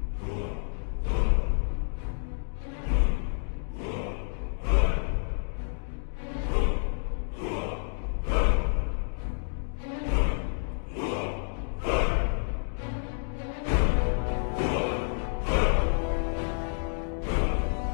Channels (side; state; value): right; silent; digital silence